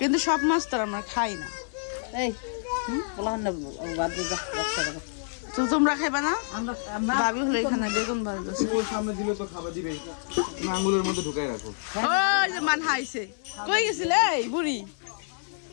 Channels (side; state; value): right; silent; digital silence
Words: সব মাছ তো আমরা খাই না। তো তোমরা খাইবা না? ভাবি হলো এখানে বেগুন বাড়ছে, ওর সামনে দিলে তো খাবার দিবেই, আঙুলের মধ্যে ঢুকাই রাখো। ওই যে মান হাইছে। কই গেছিলে এই বুড়ি?